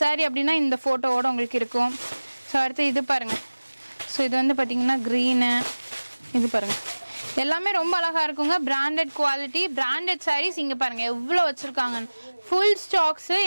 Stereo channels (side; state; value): both; inverted; correlation -1.00